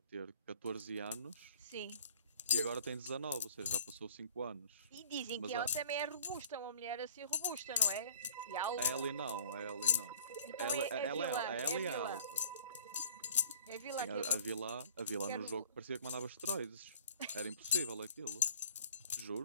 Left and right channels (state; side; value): inverted; both; correlation -0.49